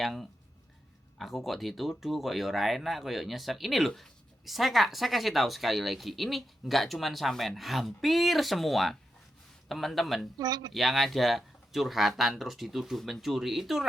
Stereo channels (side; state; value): both; normal; correlation 0.87